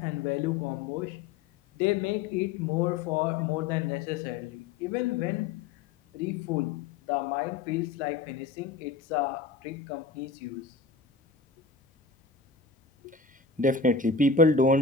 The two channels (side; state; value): right; quieter; 4.7 dB